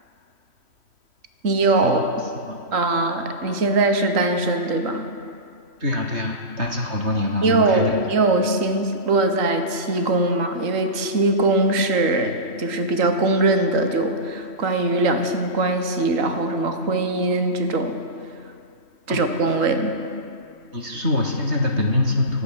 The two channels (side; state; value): left; late; 3.1 ms